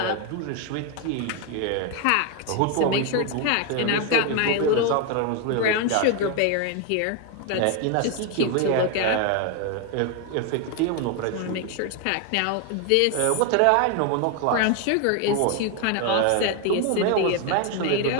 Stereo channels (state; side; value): different; both; correlation 0.01